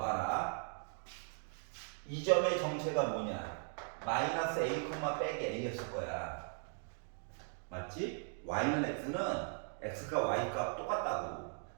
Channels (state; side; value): silent; left; 52 dB below the other